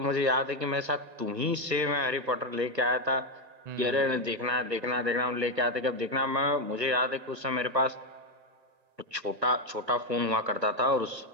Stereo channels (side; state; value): left; late; 1.4 ms